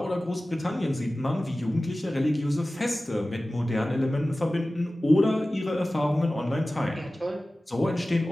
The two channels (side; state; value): both; normal; correlation 0.96